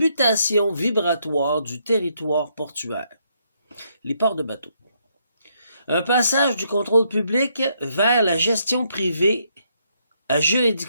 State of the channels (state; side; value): inverted; both; correlation -0.74